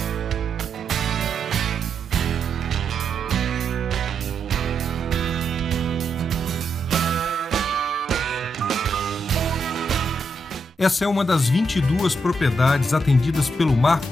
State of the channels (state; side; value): normal; both; correlation 0.81